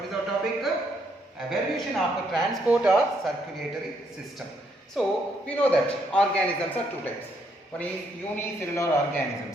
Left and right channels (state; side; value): normal; both; correlation 0.73